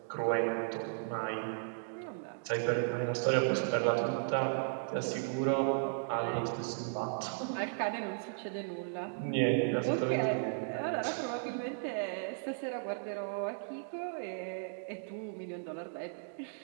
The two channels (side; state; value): left; silent; digital silence